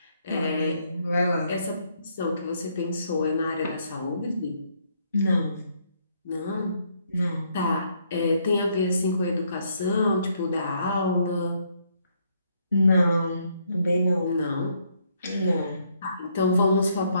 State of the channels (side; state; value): both; inverted; correlation -0.71